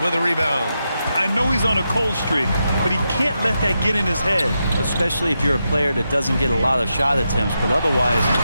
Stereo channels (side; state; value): both; inverted; correlation -0.86